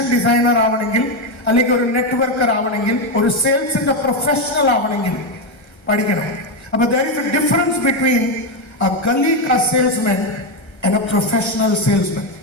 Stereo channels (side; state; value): right; late; 1.3 ms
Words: ഡിസൈനർ ആവണമെങ്കിൽ, അല്ലെങ്കിൽ ഒരു നെറ്റ്വർക്കർ ആവണമെങ്കിൽ, ഒരു സെയിൽസിന്റെ പ്രൊഫഷണൽ ആവണമെങ്കിൽ പഠിക്കണം. അപ്പൊ there is a difference between a gully ka salesman and a professional salesman.